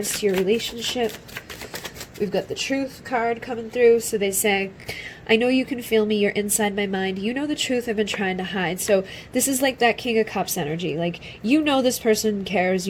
to your relationship? We've got the Truth card coming through. So they say, I know you can feel me, you're inside my mind. You know the truth I've been trying to hide. So this is like that King of Cups energy. Like, you know this person cares.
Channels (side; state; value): both; identical; correlation 1.00